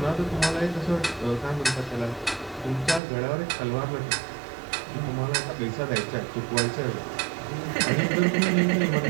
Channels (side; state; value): left; drops out; at 3.0 s